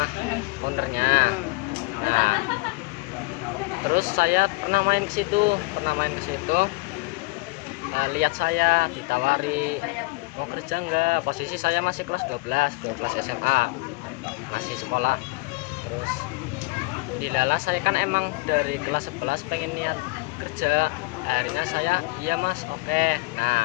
ownernya. Nah, terus saya pernah main ke situ, lihat saya ditawari mau kerja enggak. Posisi saya masih kelas 12 SMA, masih sekolah. Terus dilala saya kan emang dari kelas 11 pengen niat kerja. Akhirnya saya iya mas, oke.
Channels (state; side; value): quieter; right; 26.0 dB